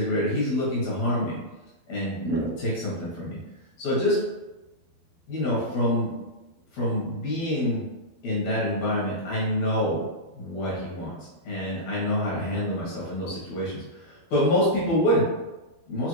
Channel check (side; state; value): right; late; 12 ms